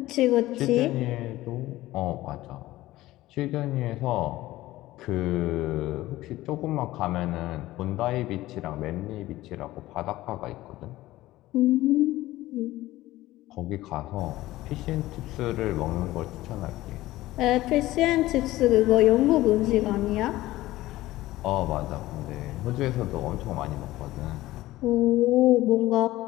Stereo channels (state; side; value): quieter; right; 16.8 dB